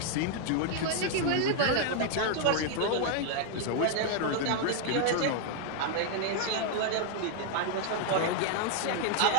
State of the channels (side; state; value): both; different; correlation 0.00